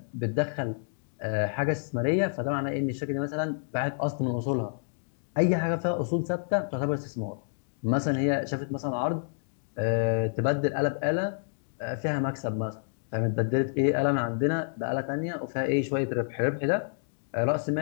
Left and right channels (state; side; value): silent; right; digital silence